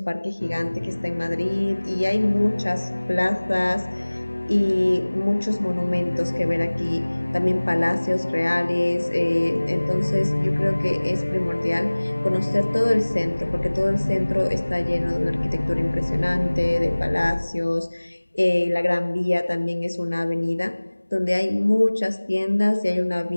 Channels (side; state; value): both; inverted; correlation -1.00